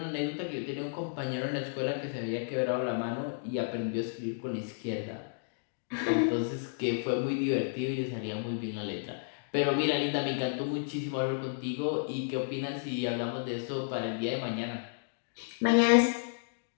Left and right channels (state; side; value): silent; right; digital silence